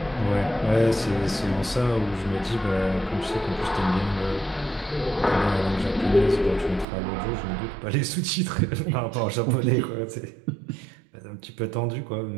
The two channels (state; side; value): drops out; left; at 6.9 s